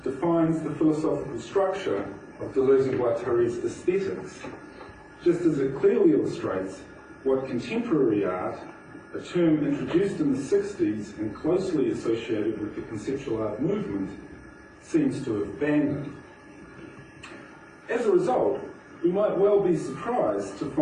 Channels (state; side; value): identical; both; correlation 1.00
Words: defines the philosophical structure of Deleuze and Guattari's aesthetics, just as it clearly illustrates what contemporary art, a term introduced in the 60s and closely associated with the conceptual art movement, seems to have abandoned. As a result, we might well be surprised to